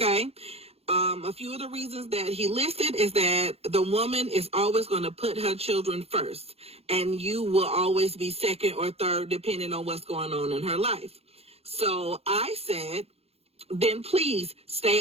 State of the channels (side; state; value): left; late; 0.29 ms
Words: A few of the reasons that he listed is that the woman is always going to put her children first, and you will always be second or third depending on what's going on in her life. So I said, then please stay